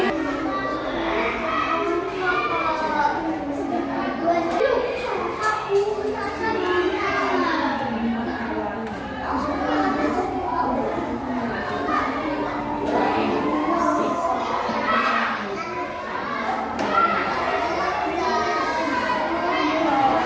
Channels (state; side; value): identical; both; correlation 1.00